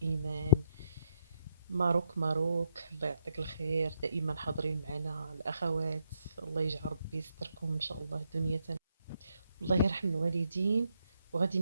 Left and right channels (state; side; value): inverted; both; correlation -0.77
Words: إيمان، ماروك، الله يعطيك الخير، دائما حاضرين معنا الأخوات. الله يجعل ربي يستركم إن شاء الله دنيا. الله يرحم الوالدين. وغادي